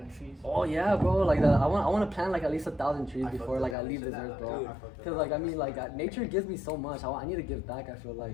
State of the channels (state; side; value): drops out; right; at 3.8 s